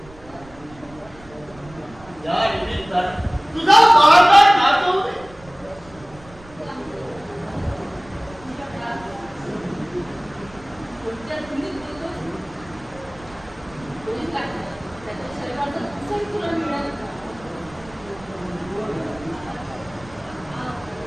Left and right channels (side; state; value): right; noise; rumble, 21 dB below the sound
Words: या निमित्तानं तुझा बाळगार नाचवू दे.